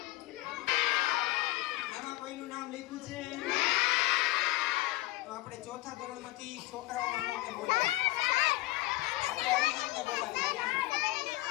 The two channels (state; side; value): quieter; right; 18.2 dB